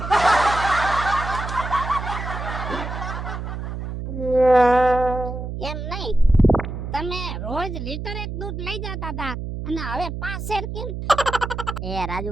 એમ નહીં, તમે રોજ લીટર એક દૂધ લઈ જતા હતા અને હવે 5 શેર કેમ? એ રાજુ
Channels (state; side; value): noise; right; hum, 6 dB below the sound